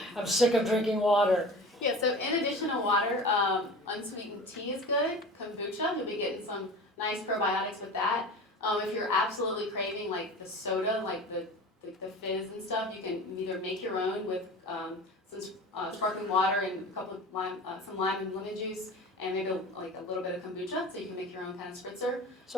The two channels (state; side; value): normal; both; correlation 0.36